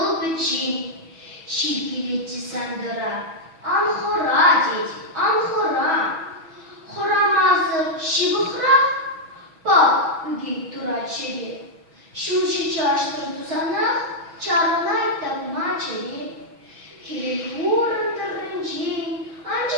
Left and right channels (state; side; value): late; left; 6.1 ms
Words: biçi, şirkileci sandıra, anhora dedi, anhora, horamazı şibıhra, bak bugün duraçeri. Şuşi çarştırdı sana, çarınay tapma çeli. Hilvurun tırınci,